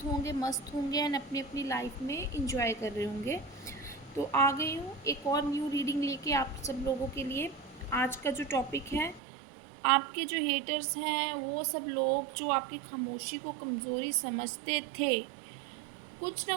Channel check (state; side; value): drops out; left; at 9.2 s